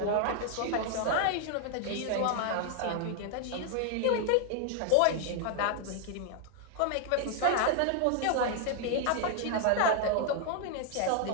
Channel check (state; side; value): different; both; correlation 0.00